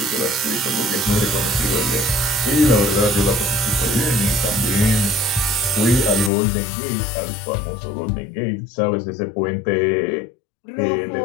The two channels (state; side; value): drops out; right; at 6.3 s